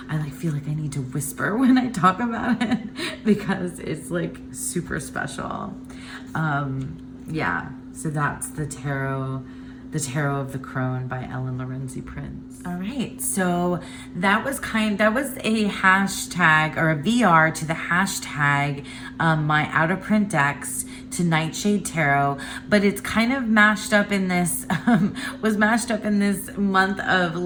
I like feel like I need to whisper when I talk about it because it's like super special. Yeah. So that's the Tarot of the Crone by Ellen Lorenzi Prince. All right, so that was a hashtag or a VR to the hashtag my out of print decks to Nightshade Tarot, but it's kind of mashed up in this was mashed up in this month of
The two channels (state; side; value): identical; both; correlation 1.00